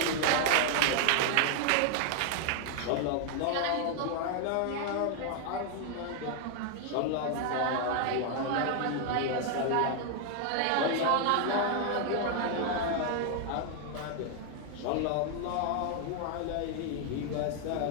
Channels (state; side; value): different; both; correlation 0.00